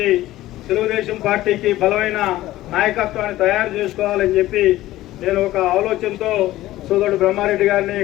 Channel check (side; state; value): right; quieter; 15.7 dB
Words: తెలుగుదేశం పార్టీకి బలమైన నాయకత్వాన్ని తయారు చేసుకోవాలని చెప్పి నేను ఒక ఆలోచనతో సోదరుడు బ్రహ్మారెడ్డి గారిని